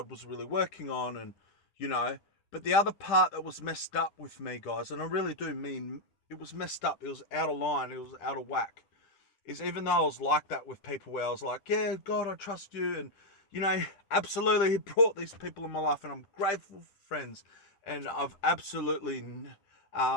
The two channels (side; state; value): right; late; 10 ms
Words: was really working on, and but the other part that was messed up with me, guys, and I really do mean it was messed up. It was out of line. It was out of whack. Is even though I was like that with people, where I was like, yeah, God, I trust you, and absolutely, he brought these people in my life, and I'm grateful for friends, and I've absolutely